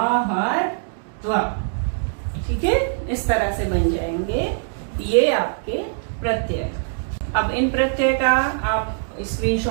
ठीक है। इस तरह से बन जाएंगे ये आपके प्रत्यय। अब इन प्रत्यय का आप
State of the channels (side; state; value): left; silent; digital silence